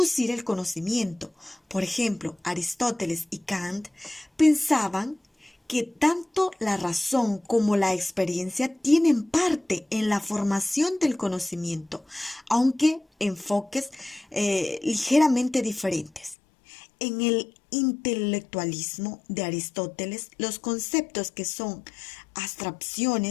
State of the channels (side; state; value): right; drops out; at 16.4 s